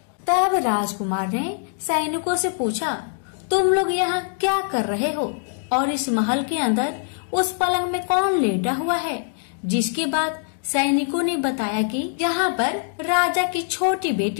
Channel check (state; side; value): silent; right; 63 dB below the other